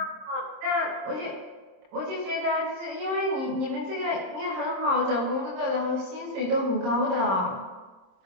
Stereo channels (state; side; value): late; left; 26 ms